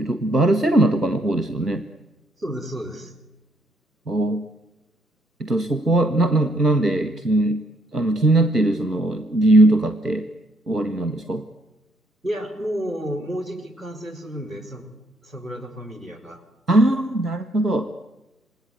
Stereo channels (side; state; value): both; normal; correlation 0.70